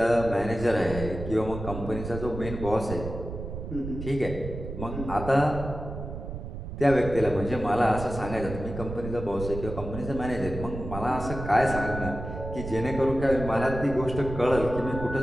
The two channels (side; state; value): right; noise; rumble, 8 dB below the sound